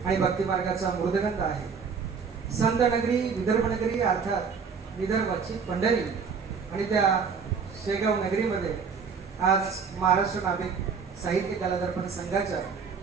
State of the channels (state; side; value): quieter; left; 5.9 dB